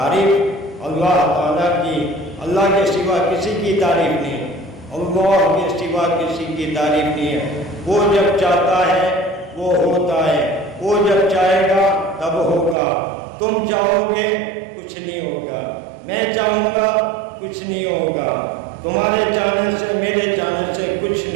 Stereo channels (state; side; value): drops out; left; at 12.8 s